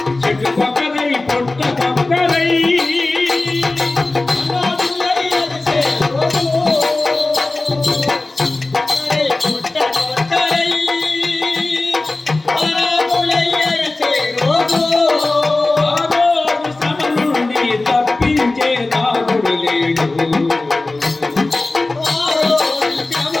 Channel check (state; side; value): quieter; right; 3.1 dB